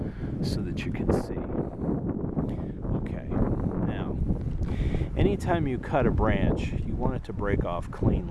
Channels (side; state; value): both; identical; correlation 1.00